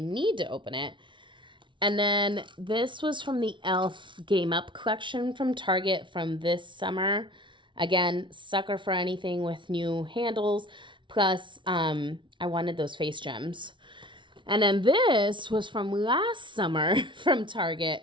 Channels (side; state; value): left; late; 0.24 ms